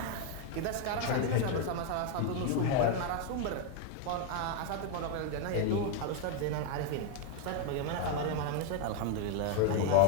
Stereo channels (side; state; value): both; different; correlation 0.01